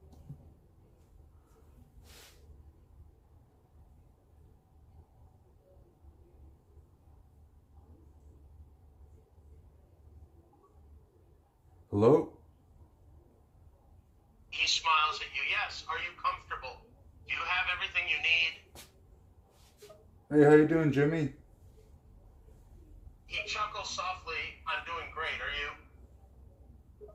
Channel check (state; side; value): identical; both; correlation 1.00